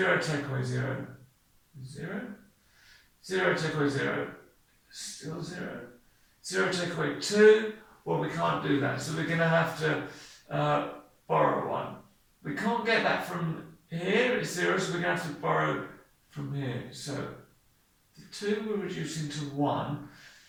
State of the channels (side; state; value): both; identical; correlation 1.00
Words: take away 0, 0. 0 take away 0, still 0. 0 take away 2, well, we can't do that, so we're going to have to borrow 1. We can't get that from here, it's 0, so we're going to have to borrow from here. So the 2 we're reducing to 1,